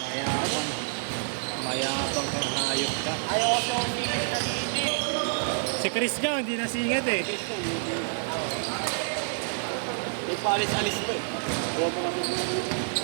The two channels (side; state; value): left; silent; digital silence